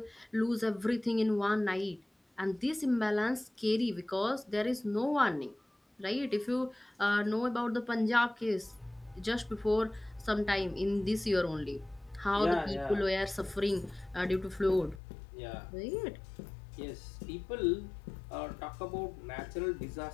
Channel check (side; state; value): right; drops out; at 15.0 s